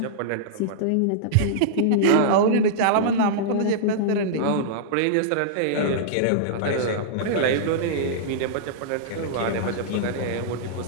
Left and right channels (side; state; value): both; different; correlation -0.03